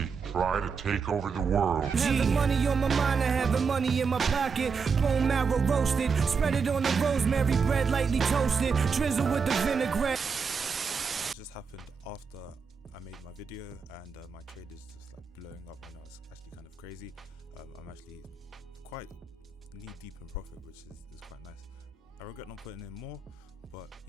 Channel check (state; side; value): quieter; left; 5.5 dB